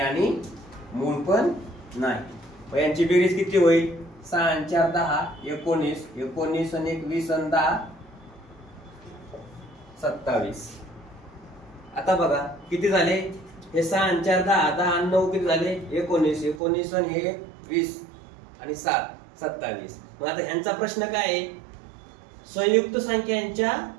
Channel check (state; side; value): drops out; left; at 16.6 s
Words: मूळ पण नाही. यांची बेरीज किती होईल, 6 आणि 4 10, 19, 19 आणि 1 20 आणि 10 27. आता बघा किती झाले, हे 6 आणि 4 10, 10 आणि 9 किती झाले, 19, 19 आणि 1 20 आणि 7 27. मग आता ह्यांचा प्रश्न काय आहे, संयुक्त संख्यांच्या